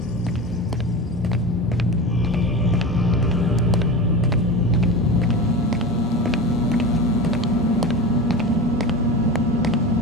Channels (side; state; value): both; normal; correlation 0.27